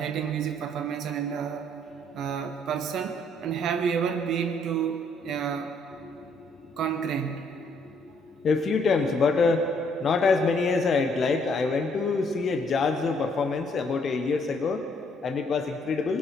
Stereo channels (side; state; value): both; normal; correlation 0.67